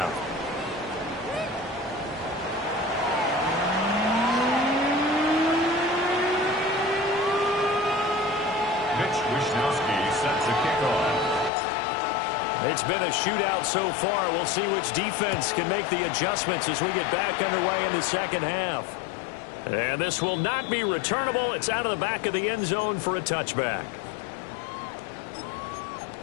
Mitch Wishnowsky set to kick off. It's been a shootout so far. We'll see which defense can make the adjustments as we get back underway in the second half. And this will not be returnable. It's out of the back of the end zone for a touchback.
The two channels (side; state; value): right; drops out; at 11.5 s